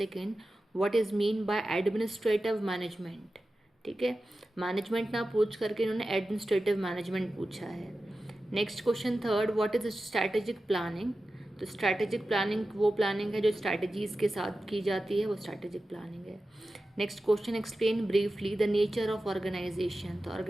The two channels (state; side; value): normal; both; correlation 0.93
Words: what is mean by administrative management. ठीक है, management ना पूछ करके इन्होंने administrative management पूछा है. Next question third, what is strategic planning. तो स्ट्रैटेजिक प्लानिंग वो प्लानिंग है जो स्ट्रैटेजीज के साथ की जाती है, वो स्ट्रैटेजिक प्लानिंग है. Next question, explain briefly the nature of organisation. तो